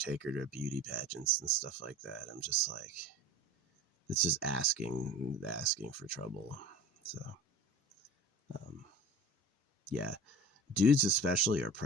her to beauty pageants and stuff like that. I'm just like, it's just asking for trouble. So, yeah. Dudes especially are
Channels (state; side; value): normal; both; correlation 0.38